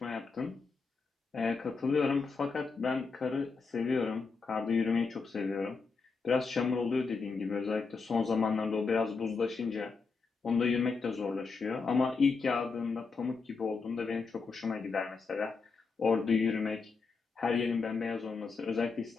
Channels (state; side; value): quieter; right; 4.7 dB